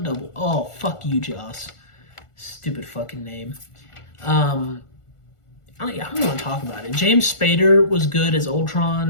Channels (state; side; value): late; right; 1.4 ms